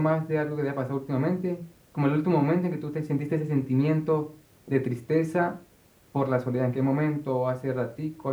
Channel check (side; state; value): both; identical; correlation 1.00